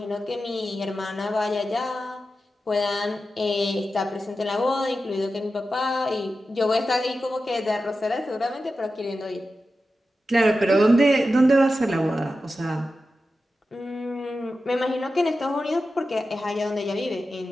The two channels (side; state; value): both; normal; correlation 0.92